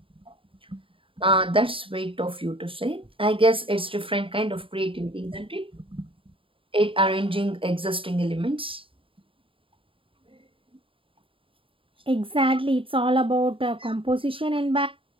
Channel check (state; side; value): late; left; 0.26 ms